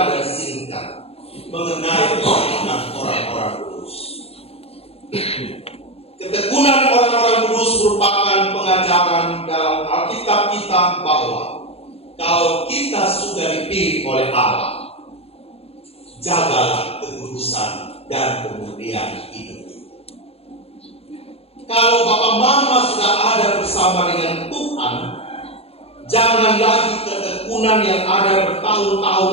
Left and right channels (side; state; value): right; late; 0.29 ms